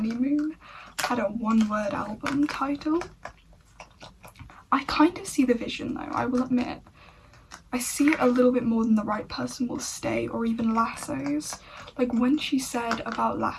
had a one-word album title. I kind of see the vision though, I will admit. I see it a little bit more than The Right Person Will Stay or even Lassos. Like when she said about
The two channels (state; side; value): identical; both; correlation 1.00